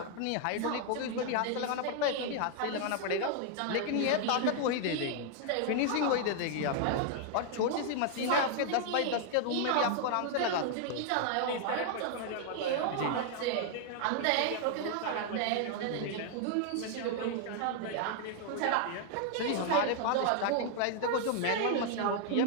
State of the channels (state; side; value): different; both; correlation 0.00